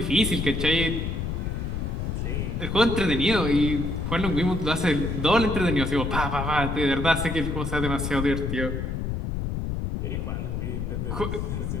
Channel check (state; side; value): noise; left; rumble, 2 dB below the sound